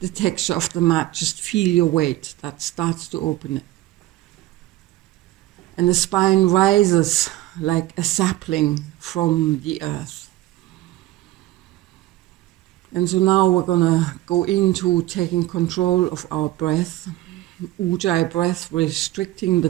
texture of the mat. Just feel your weight. That starts to open it. And the spine rises like a sapling from the earth. And so now we're gonna go into taking control of our breath. Ujjayi breath, restricting the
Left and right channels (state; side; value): quieter; left; 16.1 dB